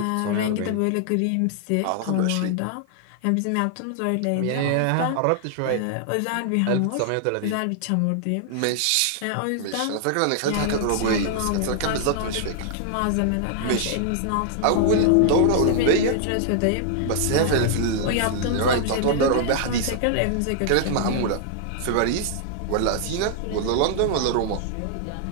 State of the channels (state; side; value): different; both; correlation -0.01